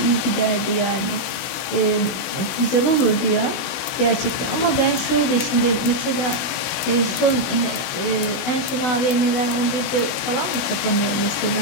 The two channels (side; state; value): right; late; 16 ms